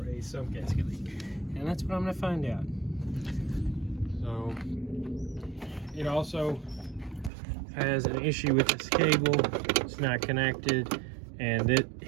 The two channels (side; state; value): left; drops out; at 7.3 s